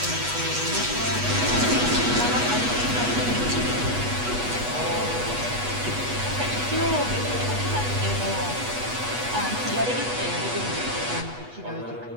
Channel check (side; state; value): left; late; 8.2 ms